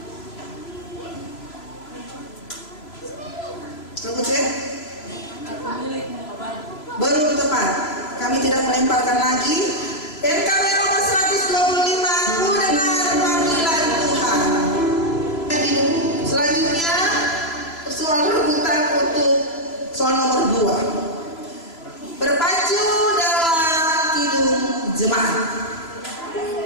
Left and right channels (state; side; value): late; right; 3.0 ms